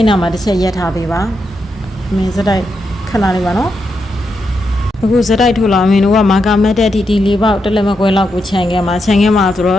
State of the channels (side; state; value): both; normal; correlation 0.84